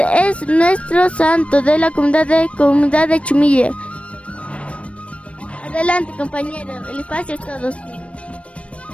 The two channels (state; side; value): late; right; 0.062 ms